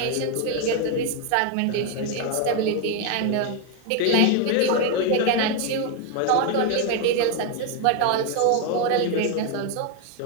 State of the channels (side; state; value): both; different; correlation 0.01